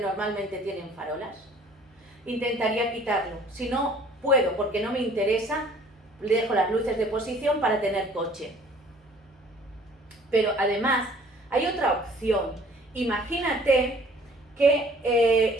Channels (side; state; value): both; normal; correlation 0.54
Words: tienen farolas, intentaría quitarlo. Si no puedo, porque no me interesa, le dejo las luces de posición para tener coche. Pero además, hay otra opción. Imagínate que